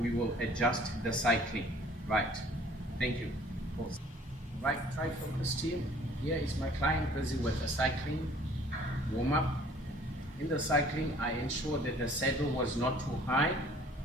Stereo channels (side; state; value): both; normal; correlation 0.54